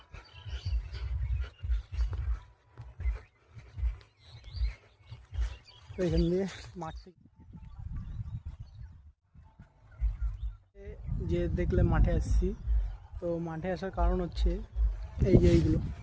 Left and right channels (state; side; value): identical; both; correlation 1.00